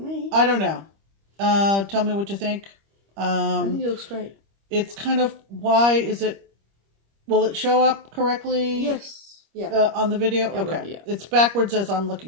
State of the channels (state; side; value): late; left; 25 ms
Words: I don't know. Tell me what you think. I think it looks great. It's kind of, why is it, will it show up correctly? Yes. Yeah. On the video? It okay. will, yeah. It's backwards as I'm